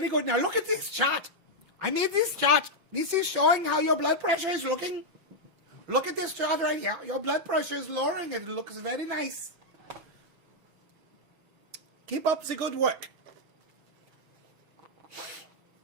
good. Now look at this chart. I made this chart. This is showing how your blood pressure is looking. Look at this chart right here. Your blood pressure is lowering and it looks very nice. Keep up the good work.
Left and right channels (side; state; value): left; late; 6.2 ms